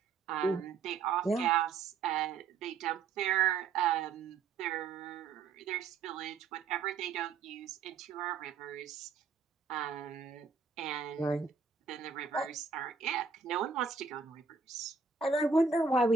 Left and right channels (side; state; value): left; quieter; 5.2 dB